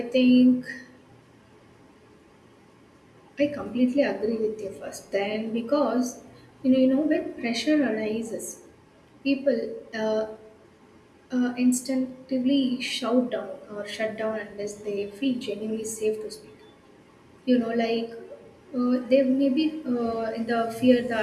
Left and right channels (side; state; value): both; identical; correlation 1.00